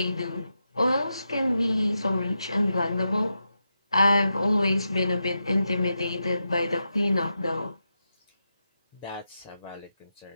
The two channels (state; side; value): inverted; both; correlation -0.88